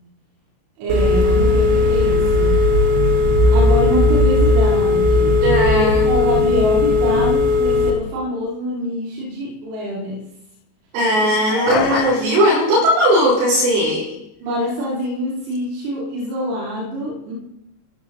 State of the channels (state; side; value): late; left; 33 ms